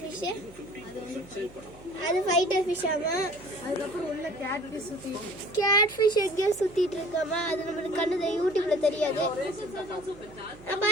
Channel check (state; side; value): noise; right; hum, 21 dB below the sound